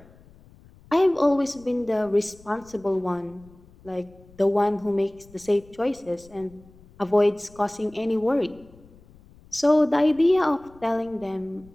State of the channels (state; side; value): noise; left; rumble, 25 dB below the sound